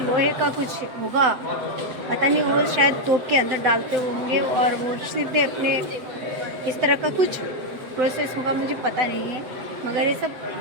का कुछ होगा, पता नहीं, वो शायद तोप के अंदर डालते होंगे और वो सीधे अपने इस तरह का कुछ प्रोसेस होगा, मुझे पता नहीं है, मगर ये सब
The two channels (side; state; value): left; late; 7.8 ms